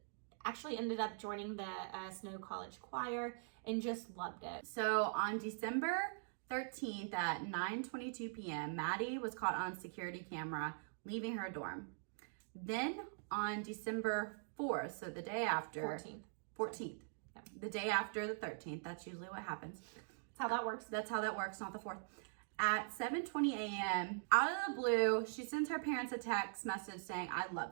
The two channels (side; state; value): left; silent; digital silence